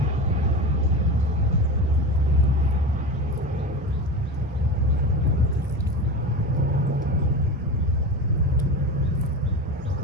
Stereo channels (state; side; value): normal; both; correlation 0.26